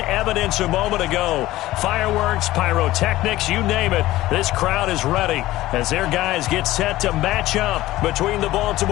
a moment ago. Fireworks, pyrotechnics, you name it. This crowd is ready as their guys get set to match up between the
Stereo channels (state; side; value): quieter; right; 16.5 dB